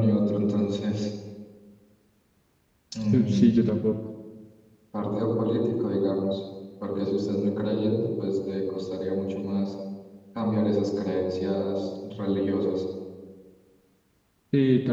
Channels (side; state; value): both; identical; correlation 1.00